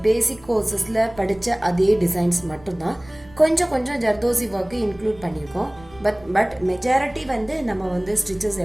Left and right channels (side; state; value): right; noise; rumble, 23 dB below the sound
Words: பேசிக் கோர்சஸ்ல படிச்ச அதே டிசைன்ஸ் மட்டும்தான். கொஞ்சம் ஜர்தோசி ஒர்க்கு இன்க்ளூட் பண்ணியிருக்கோம். பட் மெஜாரிட்டி வந்து நம்ம வந்து ஸ்டிச்சஸ்